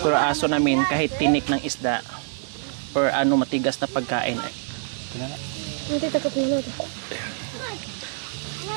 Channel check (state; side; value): silent; left; 57 dB below the other